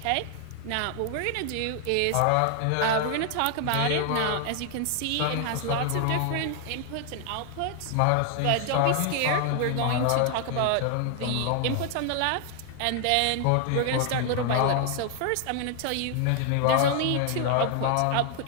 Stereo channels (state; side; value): different; both; correlation 0.00